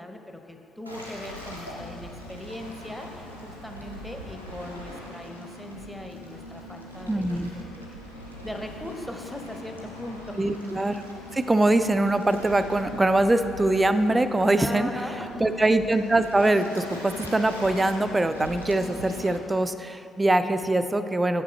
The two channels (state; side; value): normal; both; correlation 0.92